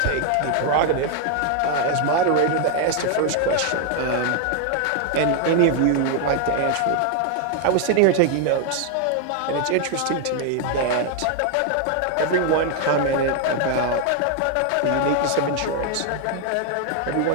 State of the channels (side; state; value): both; different; correlation 0.00